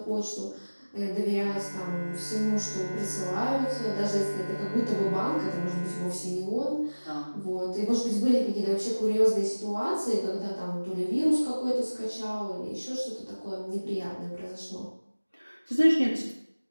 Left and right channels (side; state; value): both; inverted; correlation -1.00